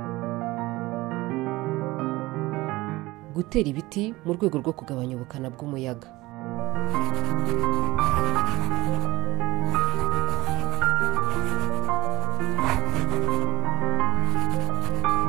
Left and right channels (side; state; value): left; quieter; 19.8 dB